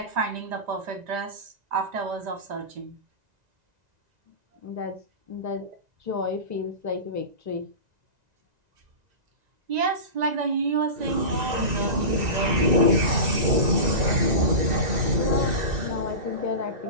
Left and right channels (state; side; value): late; left; 1.9 ms